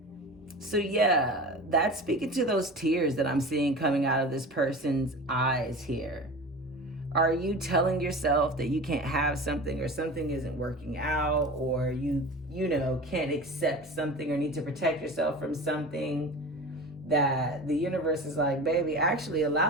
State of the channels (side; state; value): both; normal; correlation 0.34